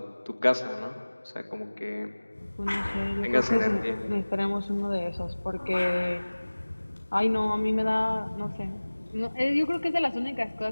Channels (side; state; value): both; inverted; correlation -1.00